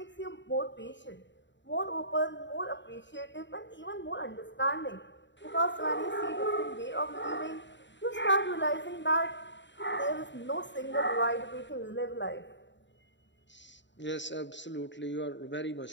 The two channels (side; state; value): right; late; 0.53 ms